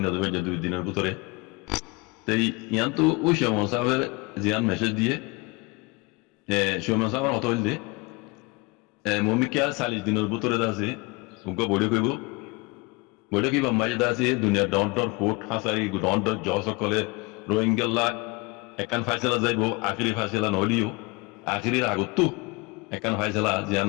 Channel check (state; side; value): quieter; right; 26.0 dB